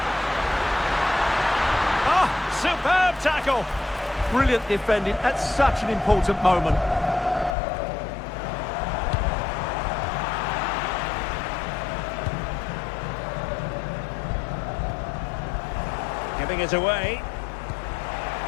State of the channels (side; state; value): right; drops out; at 7.6 s